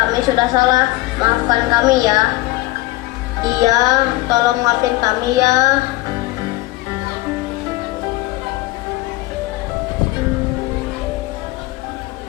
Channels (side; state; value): right; quieter; 19.3 dB